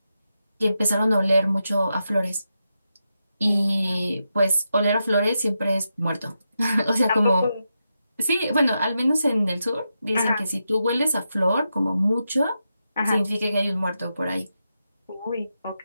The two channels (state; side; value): inverted; both; correlation -0.87